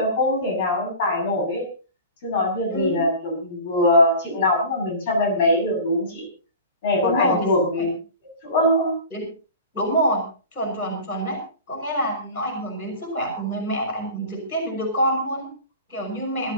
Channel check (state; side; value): inverted; both; correlation -0.37